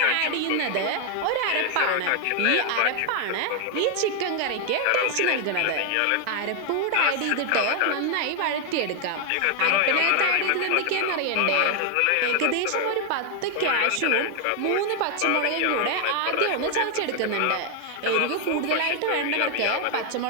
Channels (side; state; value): both; different; correlation 0.00